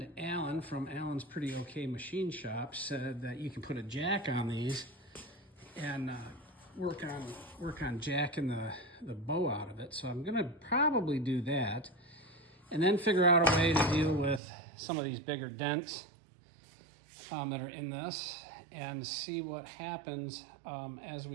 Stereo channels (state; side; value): drops out; left; at 14.4 s